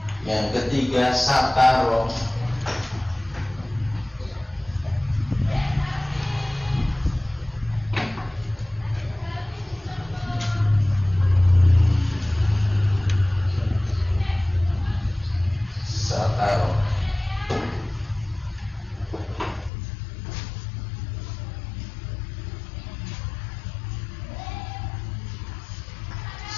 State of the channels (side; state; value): right; drops out; at 19.7 s